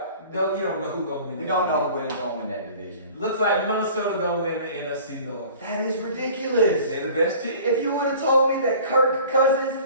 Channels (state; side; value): inverted; both; correlation -0.46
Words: No, you don't know who's going to win. We don't know who's going to win that division. Looks like Minnesota going to win the NFC North. That is ridiculous. They're the best team. If you would have told me that Kirk